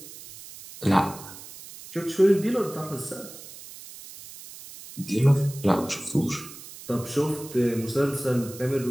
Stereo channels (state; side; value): noise; right; hiss, 16 dB below the sound